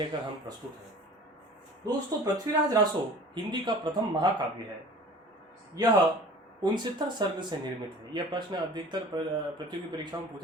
हम प्रस्तुत हैं। दोस्तों, पृथ्वीराज रासो हिंदी का प्रथम महाकाव्य है। यह 69 सर्ग से निर्मित है। यह प्रश्न अधिकतर प्रतियोगी परीक्षाओं में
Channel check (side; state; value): both; normal; correlation 0.44